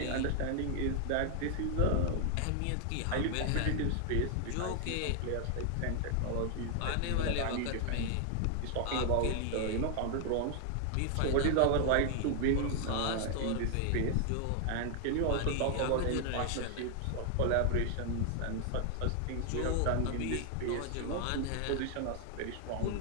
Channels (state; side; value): different; both; correlation 0.00